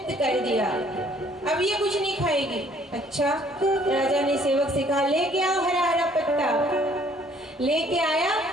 कर दिया, अब ये कुछ नहीं खाएगी। अच्छा, राजा ने सेवक से कहा लेके आओ हरा हरा पत्ता। लेके आया,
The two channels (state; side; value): normal; both; correlation 0.60